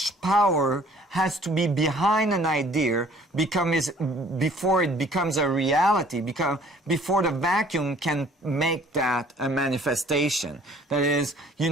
power has to be behind an idea before it becomes a reality, before the vacuum can make that a manifestation. That is, you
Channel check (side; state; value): both; normal; correlation 0.55